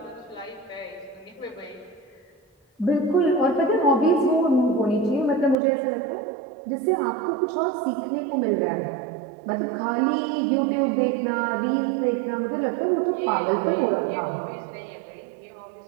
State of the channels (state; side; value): drops out; left; at 5.6 s